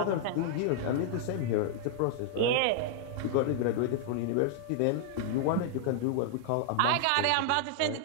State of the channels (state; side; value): different; both; correlation -0.01